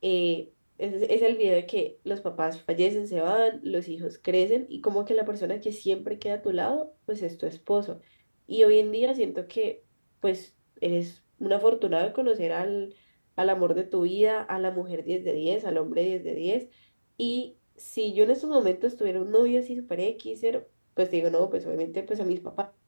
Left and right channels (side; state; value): both; inverted; correlation -1.00